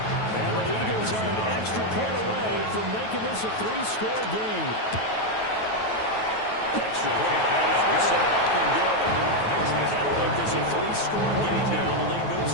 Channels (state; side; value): late; right; 9.3 ms